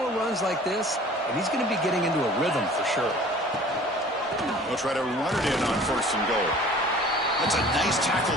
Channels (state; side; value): normal; both; correlation 0.47